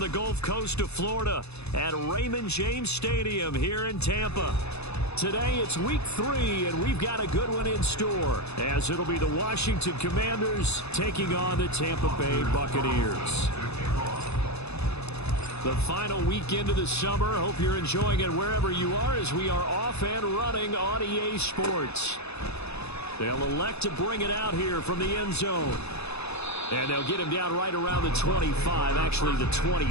Gulf Coast of Florida at Raymond James Stadium here in Tampa. Today it's week 3, and we've got a good one in store, as it'll be the Washington Commanders taking on the Tampa Bay Buccaneers. The final weekend of the summer. Hope you're enjoying it wherever you are, as we are off and running on EA Sports. They'll elect to bring it out here from the end zone. And they'll get him down right around the 25, actually the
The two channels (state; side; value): late; right; 0.80 ms